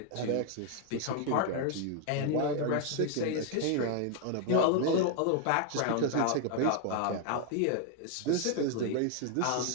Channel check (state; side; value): different; both; correlation 0.00